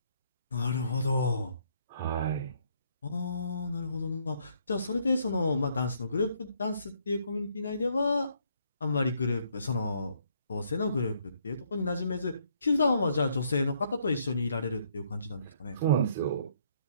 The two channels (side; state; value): both; inverted; correlation -0.69